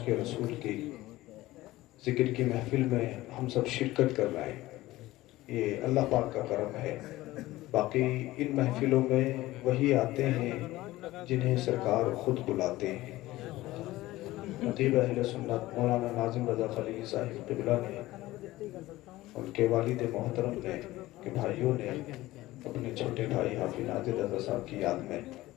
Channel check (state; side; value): quieter; right; 17.4 dB